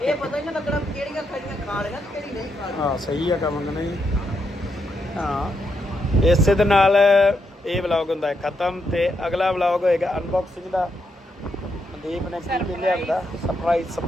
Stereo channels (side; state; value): both; normal; correlation 0.80